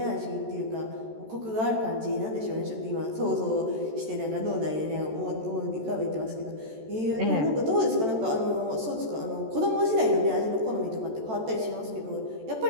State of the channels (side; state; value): left; late; 14 ms